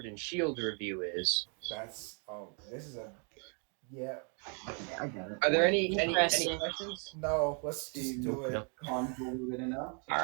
and Shield review is. This is a, yeah. I get it. Are there any Interesting. questions? No, let's just do it. Convoluted enough.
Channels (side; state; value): left; quieter; 39.8 dB